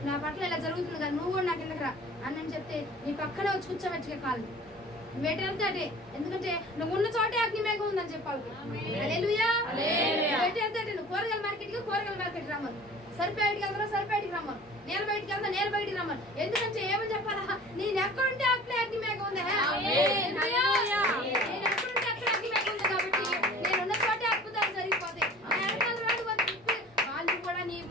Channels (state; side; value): normal; both; correlation 0.45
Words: నా పట్ల ఇలా జరుగుతుంది కదా, నువ్వు కూడా నా కిందకి రా అని చెప్తే నీ పక్కనే వచ్చి కూర్చోబెట్టుకే కాదు. నువ్వేటి వెళ్తే అటే, ఎందుకంటే నువ్వు ఉన్న చోటే అగ్ని మేఘం ఉందని చెప్పాలి. హల్లెలూయా. నువ్వేటి వెళ్తే అటే, నువ్వు కూరగాయల మార్కెట్ రమ్మను, సరిపేటికి వెళ్తారా సరిపేటికి రమ్మను, నేల బయటికి వెళ్తా నేల బయటికి రమ్మను. ఎందుకంటే ఏమని చెప్పాలా, నేను ఎక్కడుంటే అక్కడే అగ్ని మేఘం ఉంది. నేను ఎక్కడుంటే అక్కడ అగ్ని మేఘం ఉంది కాబట్టి నేనున్న చోటే అద్భుతాలు జరిగిపోతాయి. వాళ్ళు కూడా నీ